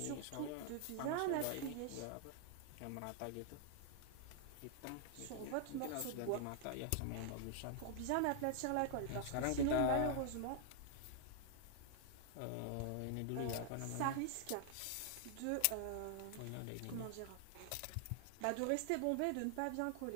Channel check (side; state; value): both; different; correlation 0.00